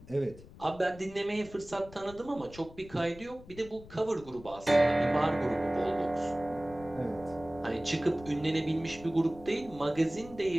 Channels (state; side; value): noise; left; rumble, 18 dB below the sound